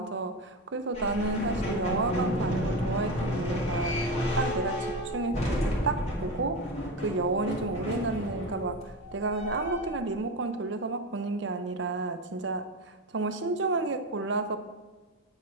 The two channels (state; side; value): normal; both; correlation 0.20